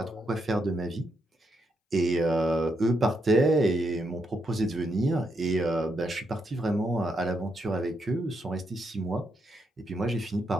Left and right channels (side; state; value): both; normal; correlation 0.79